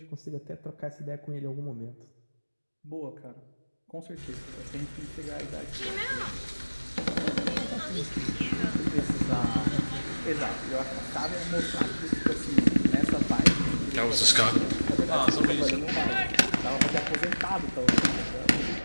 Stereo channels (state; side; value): inverted; both; correlation -1.00